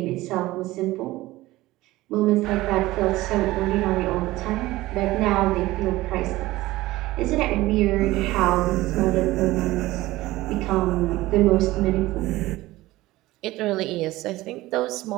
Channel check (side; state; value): left; quieter; 17.9 dB